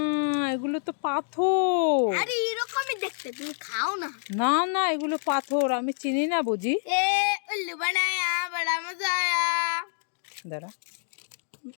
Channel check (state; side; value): silent; right; digital silence